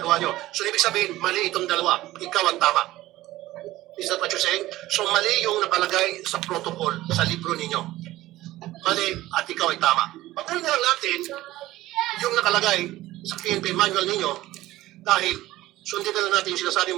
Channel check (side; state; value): left; quieter; 16.4 dB